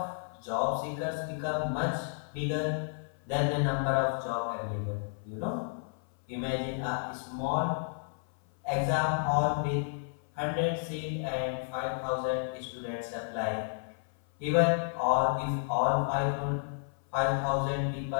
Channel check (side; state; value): right; silent; 56 dB below the other